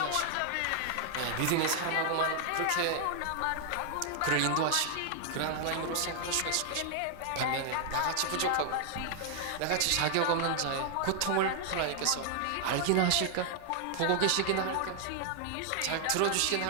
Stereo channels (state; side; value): different; both; correlation 0.00